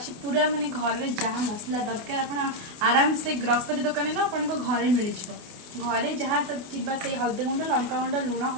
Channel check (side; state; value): left; late; 28 ms